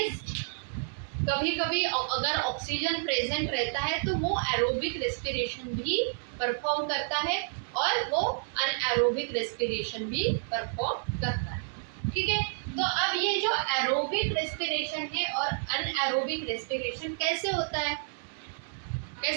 कभी कभी अगर ऑक्सीजन प्रेजेंट रहता है तो वो एरोबिक रेस्पिरेशन भी परफॉर्म करता है और वो अनएरोबिक रेस्पिरेशन भी परफॉर्म करता है. ठीक है, तो अब ये जो एरोबिक रेस्पिरेशन है और अनएरोबिक रेस्पिरेशन कैसे होता है,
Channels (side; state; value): left; silent; digital silence